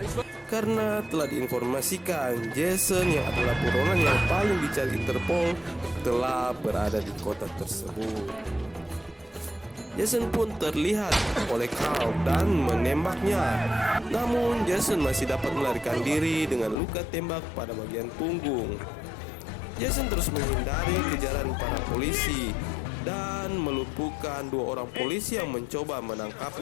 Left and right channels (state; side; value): drops out; right; at 16.8 s